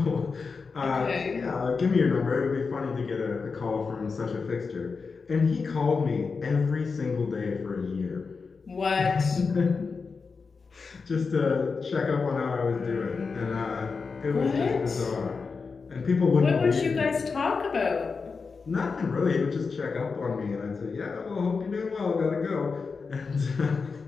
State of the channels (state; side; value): quieter; right; 4.8 dB